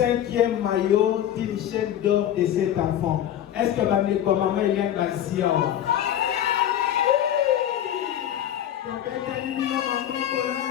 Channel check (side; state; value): right; quieter; 11.0 dB